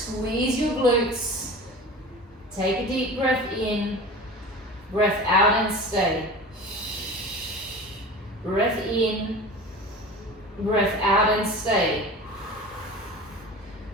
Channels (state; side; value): normal; both; correlation 0.35